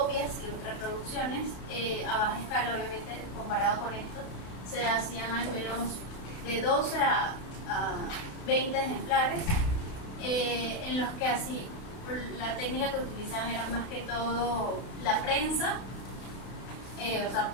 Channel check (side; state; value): right; late; 32 ms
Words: y reproducciones a baja escala, obviamente, comparado con esto, se hacían al menos de 12 a 20 ejemplares, en los que así la técnica que utilizaban era más que todo la prensa, o sea,